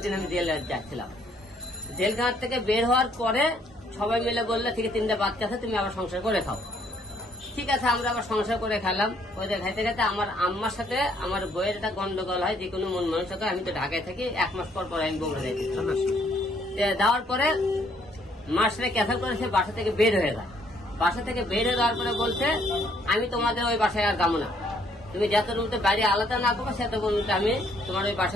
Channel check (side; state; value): both; normal; correlation 0.67